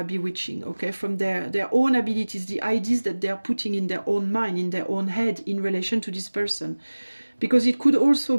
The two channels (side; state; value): both; inverted; correlation -1.00